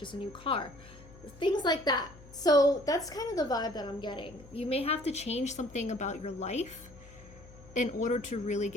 a new car. Things like that. So that's kind of the vibe that I'm getting. You may have to change something about your life in order to really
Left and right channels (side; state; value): left; noise; hum, 20 dB below the sound